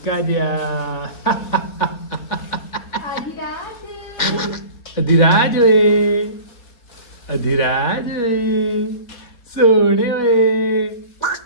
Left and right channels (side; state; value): right; late; 4.1 ms